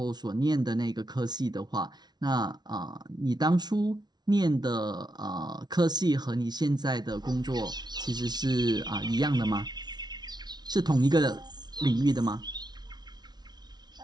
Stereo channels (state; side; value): late; left; 0.20 ms